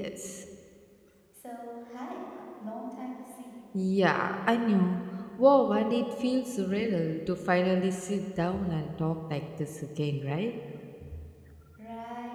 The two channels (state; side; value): identical; both; correlation 1.00